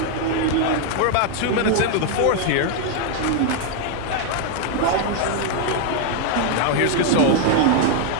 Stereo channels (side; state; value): both; different; correlation 0.00